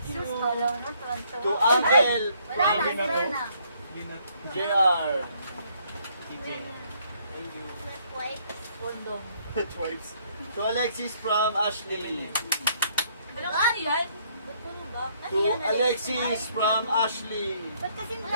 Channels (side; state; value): both; inverted; correlation -0.67